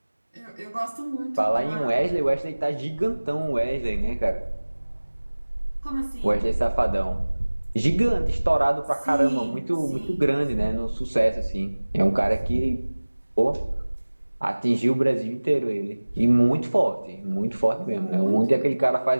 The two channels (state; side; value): inverted; both; correlation -1.00